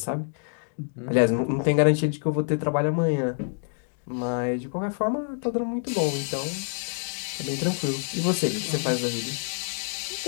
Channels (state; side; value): silent; right; digital silence